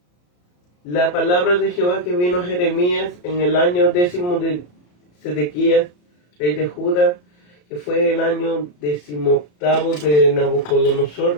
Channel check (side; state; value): right; late; 34 ms